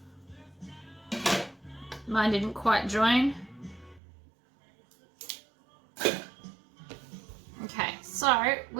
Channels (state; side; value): drops out; left; at 4.0 s